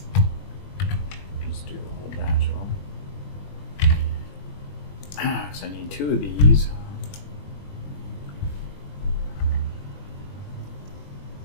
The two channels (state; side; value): late; right; 21 ms